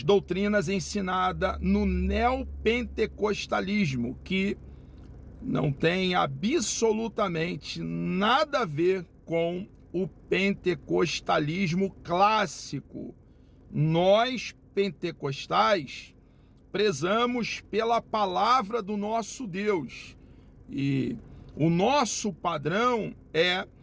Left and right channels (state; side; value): identical; both; correlation 1.00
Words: doutrinas ensinadas no neopentecostalismo, que não tem absolutamente nada a ver com o pentecostalismo clássico. Nós, pentecostais, prezamos pela palavra do nosso Deus. E o nosso padrão é